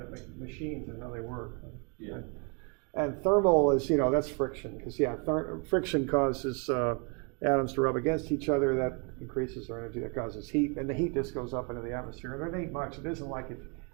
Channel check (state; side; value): quieter; left; 34.0 dB